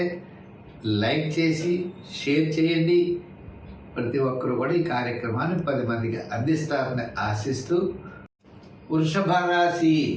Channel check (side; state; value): both; identical; correlation 1.00